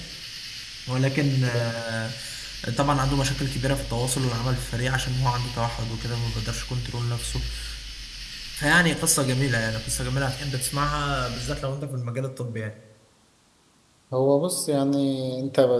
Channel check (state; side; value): identical; both; correlation 1.00